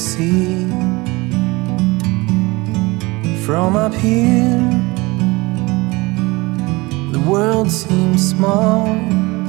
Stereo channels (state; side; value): quieter; left; 23.3 dB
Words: From up here, the world seems small.